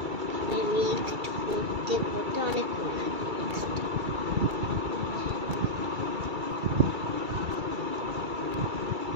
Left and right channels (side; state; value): left; late; 2.3 ms